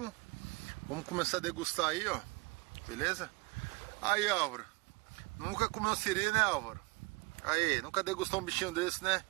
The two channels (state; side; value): quieter; left; 24.6 dB